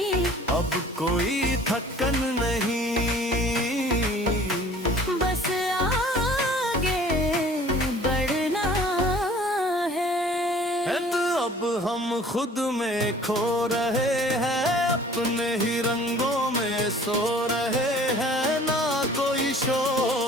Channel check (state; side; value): normal; both; correlation 0.50